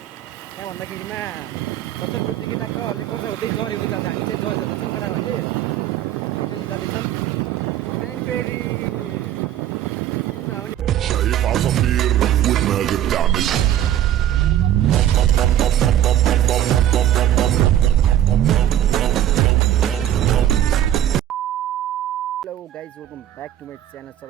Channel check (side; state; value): left; quieter; 11.6 dB